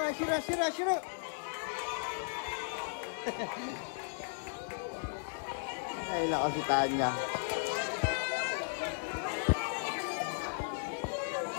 asir, asir, asir. Ay, nako si Tanya.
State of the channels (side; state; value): right; silent; 54 dB below the other